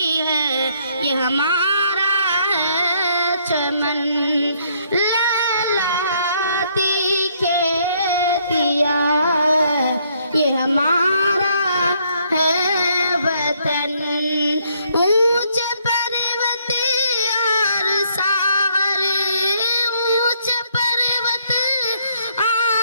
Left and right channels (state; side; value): inverted; both; correlation -0.69